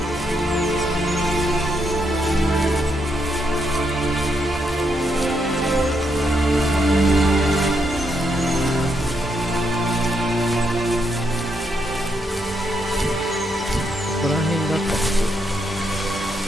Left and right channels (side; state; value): both; normal; correlation 0.79